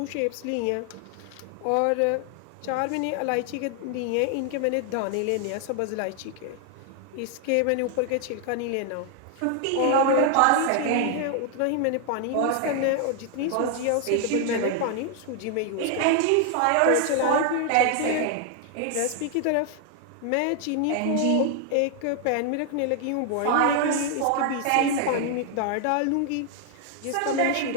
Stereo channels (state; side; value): different; both; correlation 0.00